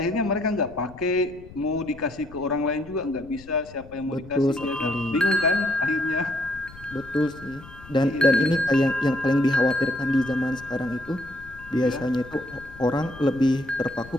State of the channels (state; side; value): noise; left; rumble, 19 dB below the sound